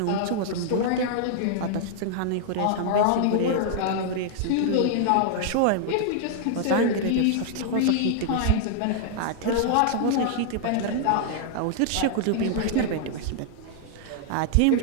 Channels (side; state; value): both; different; correlation -0.01